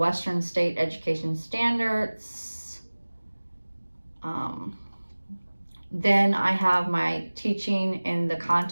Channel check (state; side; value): inverted; both; correlation -1.00